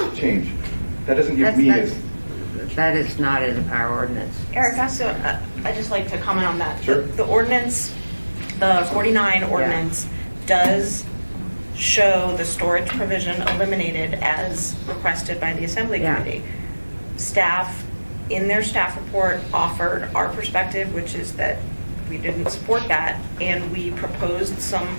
change. That doesn't give me as... That is not in our ordinance. Erica, so I'd just like to comment on that. Sure. The ordinance, the 49 ordinance, does show the storage provision eliminated as requested by the Assembly Committee. Staff, in their staff report, offered our perspective, which is that we didn't support that, and we proposed some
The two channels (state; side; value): inverted; both; correlation -1.00